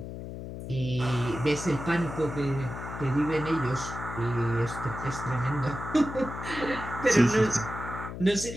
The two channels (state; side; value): noise; left; hum, 9 dB below the sound